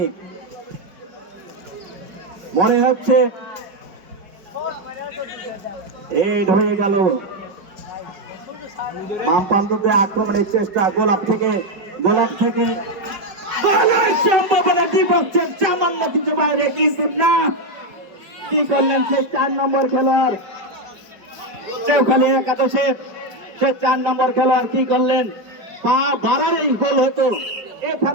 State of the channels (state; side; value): late; left; 5.1 ms